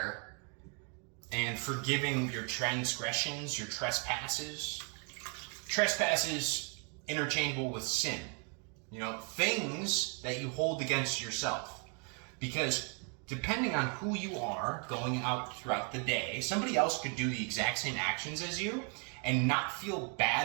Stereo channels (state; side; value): quieter; left; 38.4 dB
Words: and forgiving your transgressions, your trespasses. Trespasses interchangeable with sin. You know, things that you hold against yourself. Because depending on who you are going out throughout the day, somebody else could do the exact same actions as you and not feel